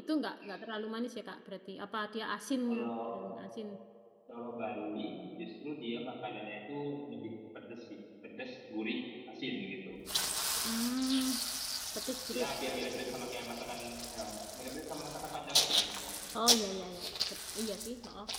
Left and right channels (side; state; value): both; identical; correlation 1.00